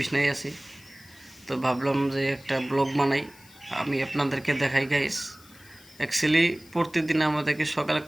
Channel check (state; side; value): noise; left; hiss, 24 dB below the sound